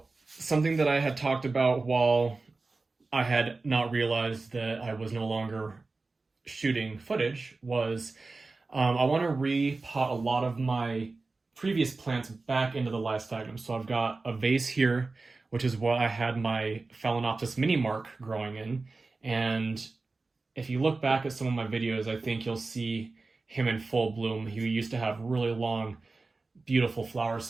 something that I had talked about while I had not realized that I was no longer shooting footage was I want to repot a lot of my previous plants back into the live sphagnum. So I've got a vase here, which is what I had my phalaenopsis mini mark growing in. And if you look back at some of my videos, I think you'll see him in full bloom. He used to have really long, beautiful flower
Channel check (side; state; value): left; quieter; 3.7 dB